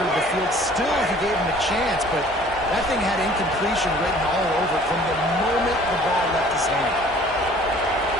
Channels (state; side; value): normal; both; correlation 0.52